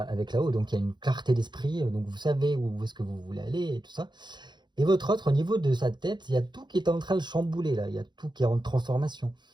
là-haut, donc il y a une clarté d'esprit, donc vous savez où est-ce que vous voulez aller et tout ça. Et votre autre, au niveau de sa tête, il y a tout qui est en train de chambouler là, il y a tout qui est en transformation.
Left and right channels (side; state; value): left; late; 0.21 ms